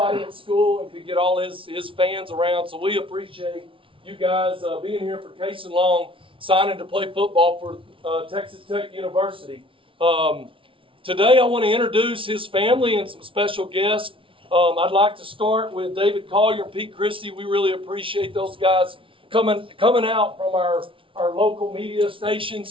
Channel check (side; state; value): left; late; 0.25 ms